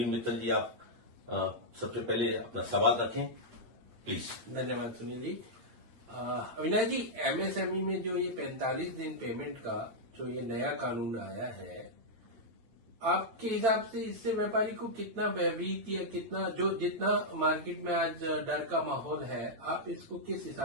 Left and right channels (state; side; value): late; left; 8.7 ms